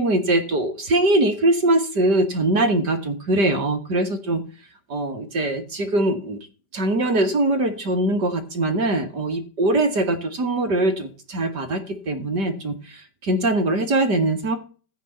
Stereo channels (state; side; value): late; left; 5.1 ms